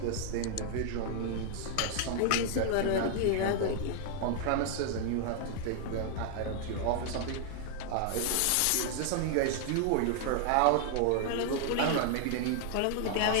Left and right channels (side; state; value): both; different; correlation 0.00